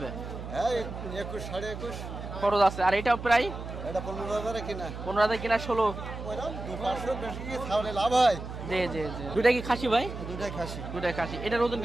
হ্যাঁ, 21, 21.5। খরচ আছে। আর এটাও প্রায় এটা 15,000 কিনা। 15,000 কিনা 16। ওইরকম 2-500 বেশি কি ছাড়লে লাভ হয়? জি জি জি। দুইটা কি খাসি ভাই? দুটাই খাসি। দুইটাই খাসি। এটার ওজন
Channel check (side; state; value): right; noise; hum, 9 dB below the sound